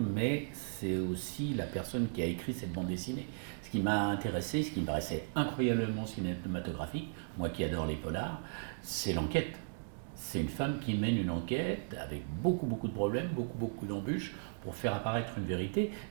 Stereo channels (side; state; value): left; silent; digital silence